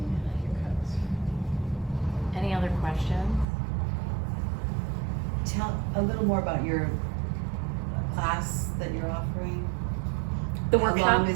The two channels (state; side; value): drops out; left; at 3.5 s